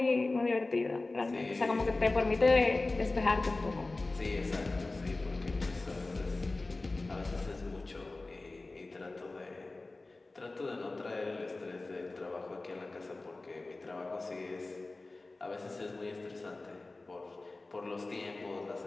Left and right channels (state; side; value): quieter; right; 3.2 dB